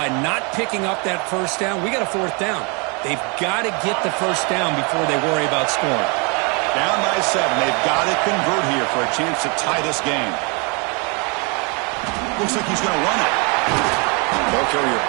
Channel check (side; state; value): left; quieter; 32.7 dB